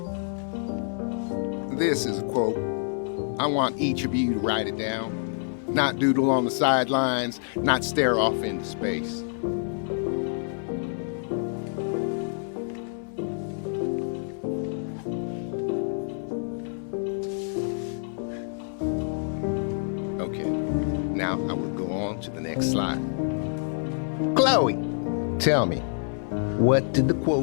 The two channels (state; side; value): silent; right; 60 dB below the other